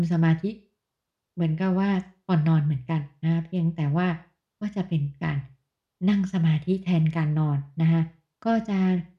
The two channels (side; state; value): both; identical; correlation 1.00